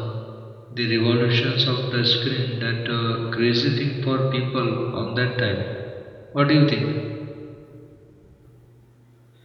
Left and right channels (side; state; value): both; identical; correlation 1.00